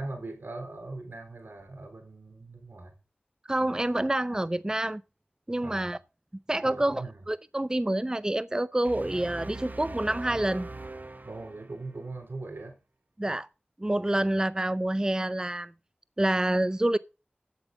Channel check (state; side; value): normal; both; correlation 0.98